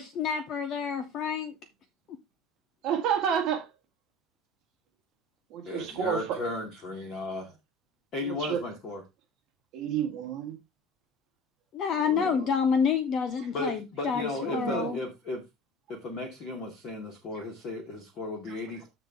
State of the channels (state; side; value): normal; both; correlation 0.38